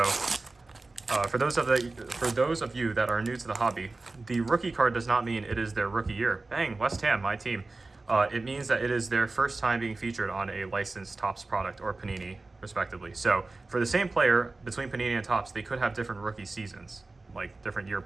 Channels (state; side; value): quieter; left; 3.4 dB